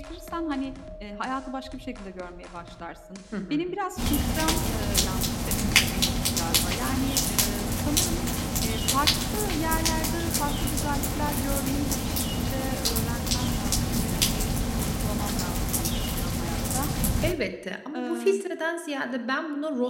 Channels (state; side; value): identical; both; correlation 1.00